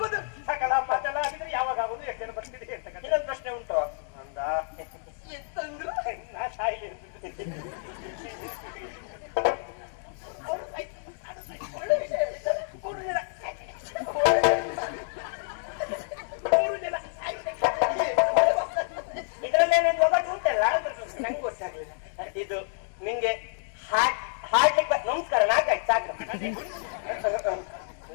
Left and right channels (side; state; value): right; silent; digital silence